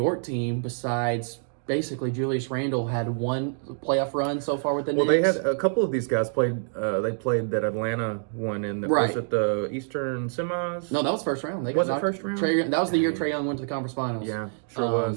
team, besides basically Julius Randle, had 1 playoff run so far with the Knicks. Well, they had a couple of these guys played. They played that Atlanta one in the was it the Eastern semis? No, that was first round. Was it first round? That was the year Trae Young went to the conference finals. Yeah, sure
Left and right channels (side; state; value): left; silent; digital silence